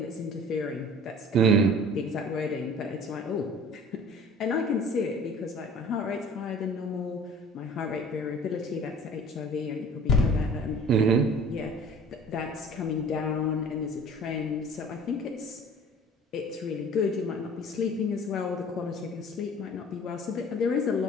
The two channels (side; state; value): both; normal; correlation 0.46